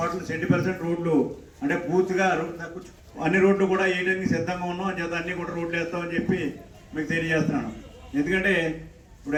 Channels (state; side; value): identical; both; correlation 1.00